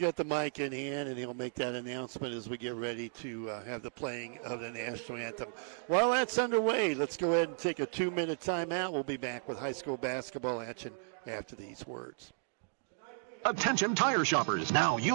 the mic in hand, and he'll make that announcement as we get ready to have the playing of the national anthem. While that's underway, let's go ahead and take a 2-minute timeout. We'll be back with high school basketball action after these words. Attention tire shoppers. Now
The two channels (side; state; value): left; silent; digital silence